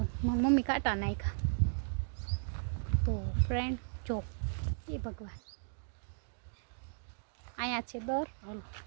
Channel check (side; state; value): left; silent; digital silence